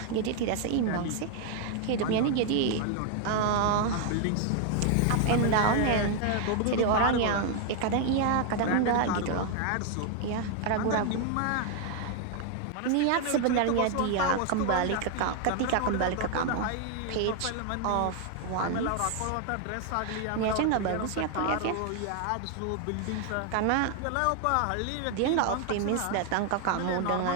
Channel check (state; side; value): different; both; correlation 0.00